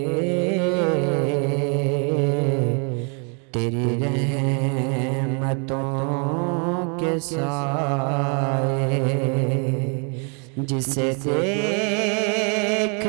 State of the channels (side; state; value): left; quieter; 37.6 dB